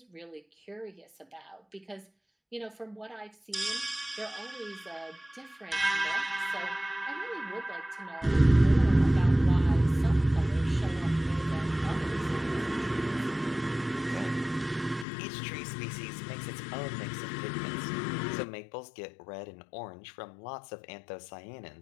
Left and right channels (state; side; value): drops out; right; at 15.1 s